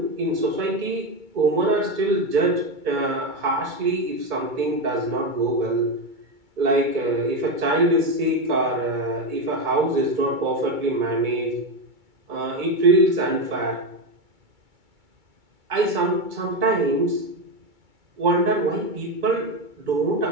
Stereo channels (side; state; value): left; late; 2.3 ms